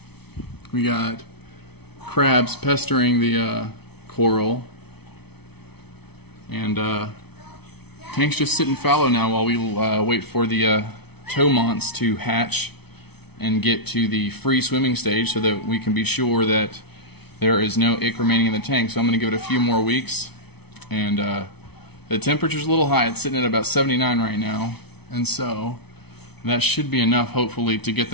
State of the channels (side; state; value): right; late; 0.98 ms